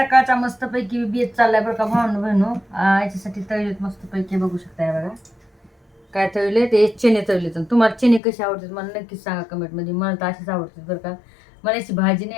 मस्तपैकी बेत चाललाय बरं का भावनं बहिणू. याच्यासाठी तळलेत मस्तपैकी, बघू शकताय बघा काय तळले. ते चणे तळले. तर तुम्हाला चणे कशी आवडतात मला नक्कीच सांगा कमेंटमध्ये. मला तर अशीच आवडतात बरं का. मला याची भाजी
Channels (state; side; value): drops out; right; at 8.2 s